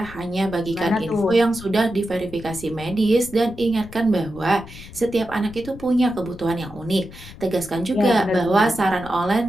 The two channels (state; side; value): noise; left; rumble, 17 dB below the sound